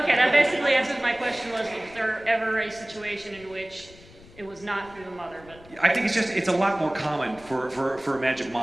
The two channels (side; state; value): left; noise; rumble, 22 dB below the sound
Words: that basically answers my question, was there ever a situation in which it was not through the mother, but... I think it's a lot more common for a magic